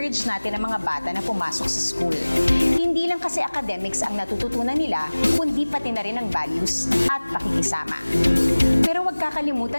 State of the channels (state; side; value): inverted; both; correlation -1.00